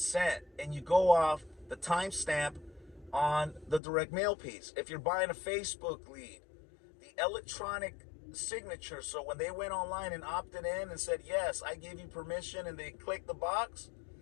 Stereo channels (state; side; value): drops out; right; at 3.8 s